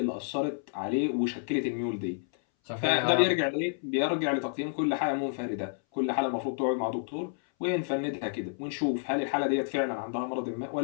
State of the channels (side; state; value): right; silent; 58 dB below the other